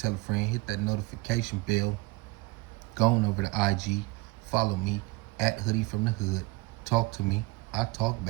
a friend, hit that notification bell, go on over to IG, follow me at Hoodie from the Hood, talk to me, I talk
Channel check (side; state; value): left; quieter; 23.1 dB